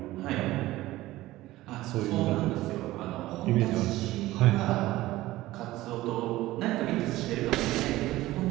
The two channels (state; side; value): quieter; left; 17.0 dB